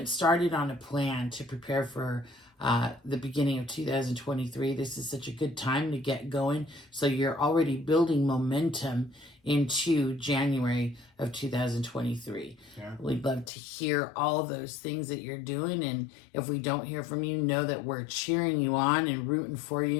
started on a plan to prepare for the beginning of 2023, this is such a good time to get going. So you're already building momentum into January of 2023. Yeah. We'd love to hear all those things that you're doing, and if we don't hear from you, know that we're cheering you on and rooting for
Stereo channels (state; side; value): drops out; right; at 13.5 s